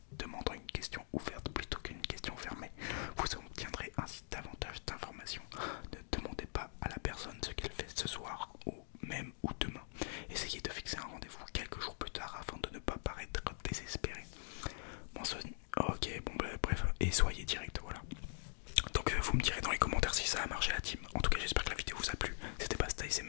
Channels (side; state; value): right; silent; digital silence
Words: demande en une question ouverte plutôt qu'une question fermée. Vous obtiendrez ainsi davantage d'informations. Ne demandez pas à la personne ce qu'elle fait ce soir ou même ou demain. Essayez de fixer un rendez-vous quelques jours plus tard afin de ne pas paraître désespéré. Ok, bon bah, bref, et soyez direct, voilà. Donc vous me direz dans les commentaires si ça a marché la team. En tout cas, j'espère que la vidéo vous a plu. C'était pas